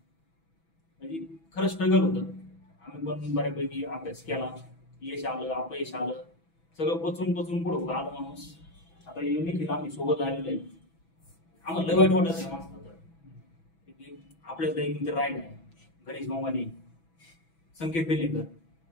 म्हणजे खरं स्ट्रगल होतं. आम्ही पण बऱ्यापैकी अभ्यास केला, यश आलं अपयश आलं, सगळं पचून पुढं आलं माणूस. आता निखिल आम्ही सोबत आलेलो आहे. आम्हाला लय वाईट वाटत आहे माणसाला तर आपल्याला एक मित्र राहिला आहे, गणेश मामाने, संकेत बेलेकर,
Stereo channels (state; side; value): late; right; 6.1 ms